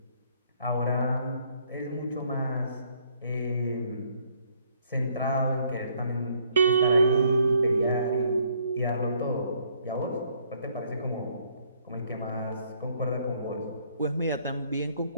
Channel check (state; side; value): inverted; both; correlation -0.67